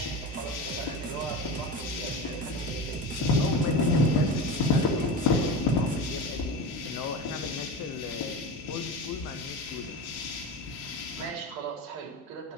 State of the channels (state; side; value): normal; both; correlation 0.25